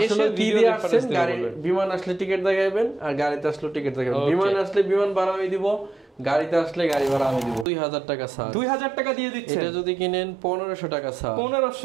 এসে ভিডিও আসেন, গাড়ি বিমান আসলে টিকিট দেখাবেন আর গাড়িতে আসলে টিকিট দেখাবেন। বিমান আসলে বিমান ভাড়া আমি দিব, গাড়িতে আসলে গাড়ি ভাড়া আমি দিব। 2000 টাকা স্যার। 2000 টাকা দিয়ে দিচ্ছেন। এটা যদি কিনেন 1500 টাকা স্যার।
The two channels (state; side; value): drops out; left; at 7.7 s